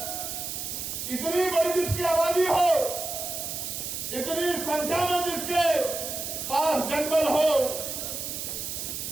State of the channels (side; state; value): right; noise; hiss, 5 dB below the sound